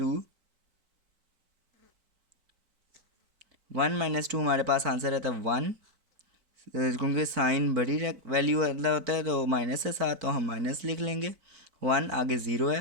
- 2 हमारे पास आंसर रहता है 1, क्योंकि साइन बड़ी वैल्यू वाला होता है तो माइनस के साथ, तो हम माइनस लिख लेंगे। 1 आगे 0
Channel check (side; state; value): left; late; 4.5 ms